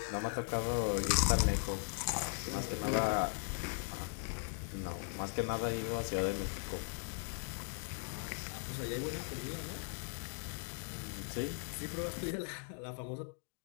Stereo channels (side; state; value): right; silent; 52 dB below the other